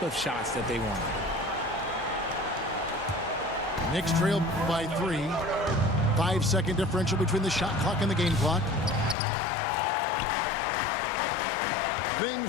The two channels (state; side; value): drops out; right; at 9.2 s